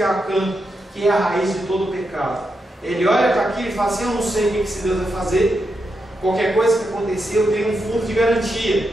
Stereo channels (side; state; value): both; normal; correlation 0.85